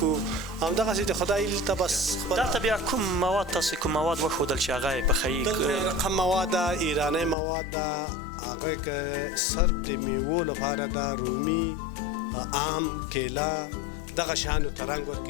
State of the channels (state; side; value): drops out; right; at 7.4 s